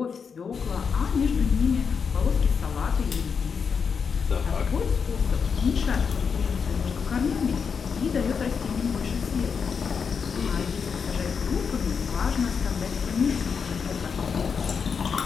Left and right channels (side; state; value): right; quieter; 6.1 dB